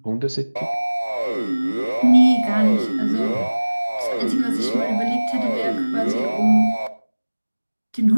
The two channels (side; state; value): both; inverted; correlation -1.00